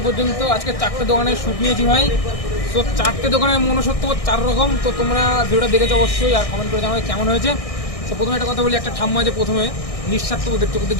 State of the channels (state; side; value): late; right; 1.6 ms